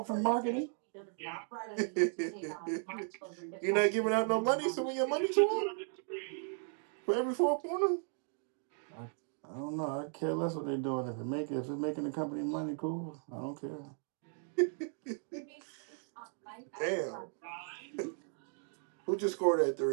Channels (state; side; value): silent; left; 54 dB below the other